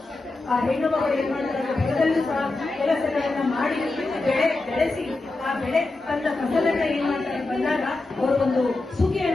ಆ ಹೆಣ್ಣು ಮಗಳು ಏನ್ ಮಾಡ್ತಾರೆ, ಹೊಲದಲ್ಲೂ ಸಹ ಕೆಲಸಗಳನ್ನ ಮಾಡಿ ಬೆಳೆಸಿ ಆ ಬೆಳೆ ತಂದ ಫಸಲನ್ನ ಏನ್ ಮಾಡ್ತಾರೆ ಬಂದಾಗ ಅವರು ಒಂದು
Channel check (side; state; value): right; quieter; 3.2 dB